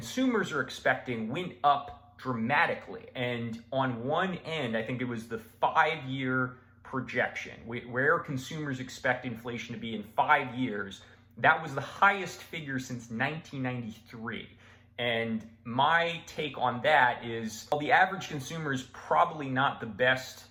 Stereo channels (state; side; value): identical; both; correlation 1.00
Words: are expecting went up dramatically. And on one end, I think it was the 5-year projection, where consumers expect inflation to be in 5 years. That was the highest figure since 1993. And my take on that is, while the average consumer is probably not the